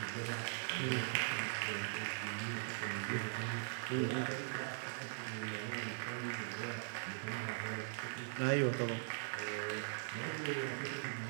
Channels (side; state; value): left; silent; digital silence